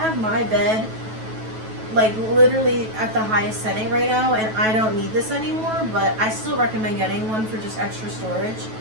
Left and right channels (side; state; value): left; late; 9.2 ms